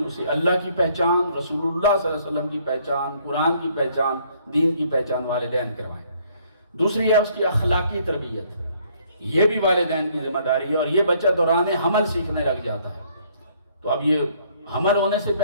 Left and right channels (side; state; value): both; inverted; correlation -0.64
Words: اسے اللہ کی پہچان، رسول اللہ صلی اللہ علیہ وسلم کی پہچان، قرآن کی پہچان، دین کی پہچان والدین کروائیں۔ دوسری ہے اس کی اخلاقی تربیت، یہ بھی والدین کی ذمہ داری ہے، اور یہ بچہ دوران حمل سیکھنے لگ جاتا ہے۔ تو اب یہ حمل ہونے سے